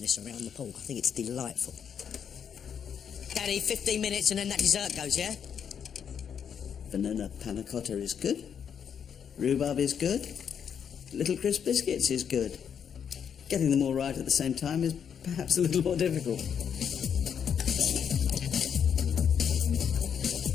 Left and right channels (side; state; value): right; quieter; 7.8 dB